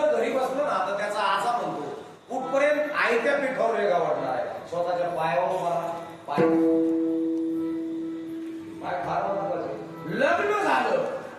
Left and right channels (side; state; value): both; identical; correlation 1.00